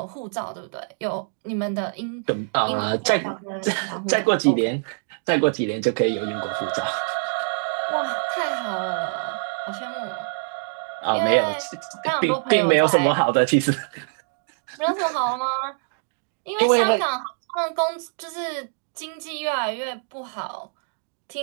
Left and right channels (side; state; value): left; silent; digital silence